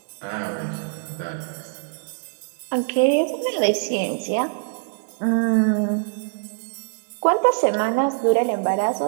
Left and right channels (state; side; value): silent; left; digital silence